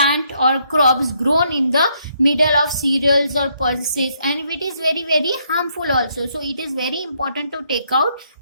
or crops grown in the middle of cereals or pulses, and it is very very harmful also. So it is very important to take out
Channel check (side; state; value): both; inverted; correlation -0.72